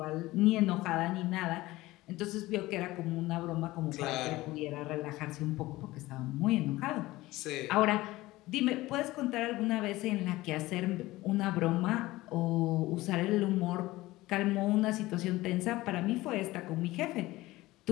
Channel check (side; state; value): right; quieter; 18.4 dB